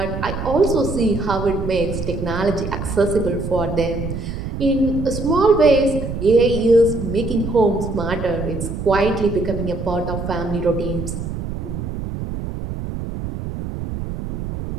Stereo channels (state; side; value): noise; right; rumble, 6 dB below the sound